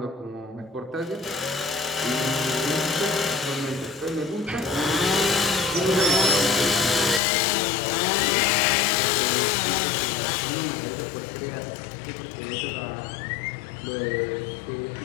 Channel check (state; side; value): drops out; right; at 7.2 s